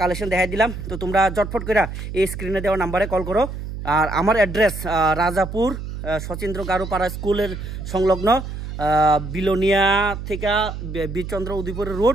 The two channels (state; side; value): noise; right; hum, 8 dB below the sound